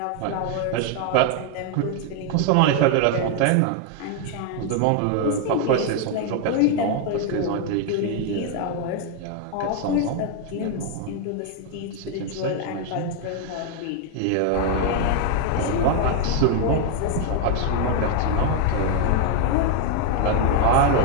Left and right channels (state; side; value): different; both; correlation 0.00